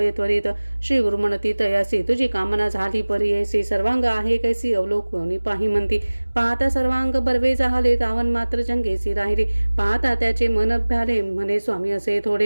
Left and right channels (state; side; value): inverted; both; correlation -1.00